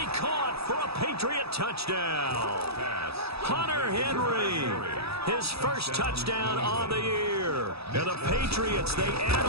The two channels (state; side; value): late; left; 0.77 ms